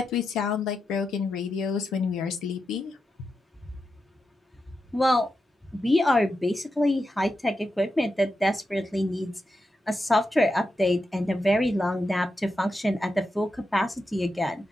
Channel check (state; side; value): normal; both; correlation 0.88